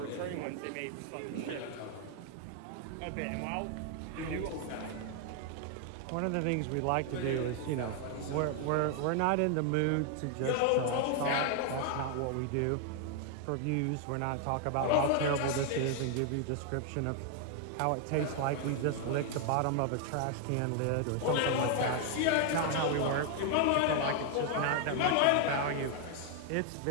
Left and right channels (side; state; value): both; different; correlation 0.00